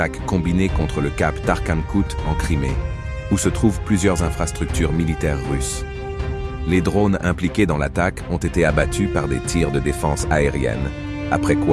combinée contre le cap Tarkhankut en Crimée, où se trouvent plusieurs infrastructures militaires russes. Les drones impliqués dans l'attaque ont été abattus par des tirs de défense aérienne, après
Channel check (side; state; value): both; identical; correlation 1.00